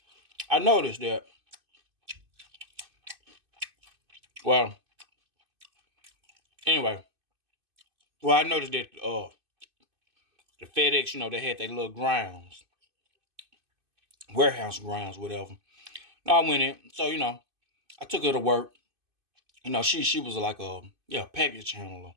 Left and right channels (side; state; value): left; late; 2.5 ms